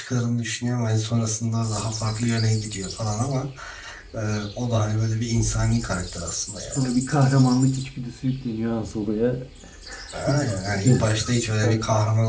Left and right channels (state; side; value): identical; both; correlation 1.00